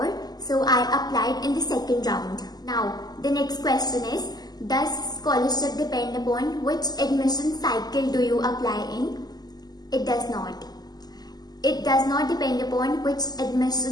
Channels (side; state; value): right; late; 0.20 ms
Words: So I applied in the second round. Now, the next question is, does scholarship depend upon which admission cycle do you apply in? It does not. It does not depend upon which